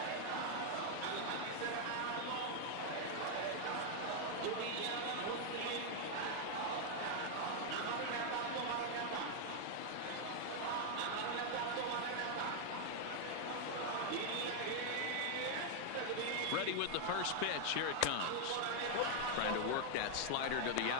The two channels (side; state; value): both; different; correlation 0.00